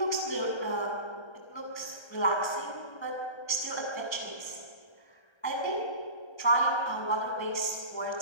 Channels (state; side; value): late; right; 1.3 ms